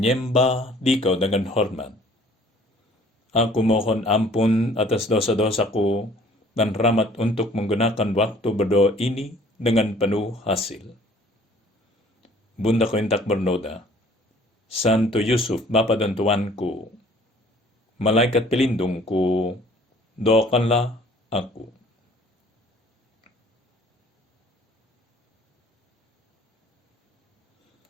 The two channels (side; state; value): both; normal; correlation 0.54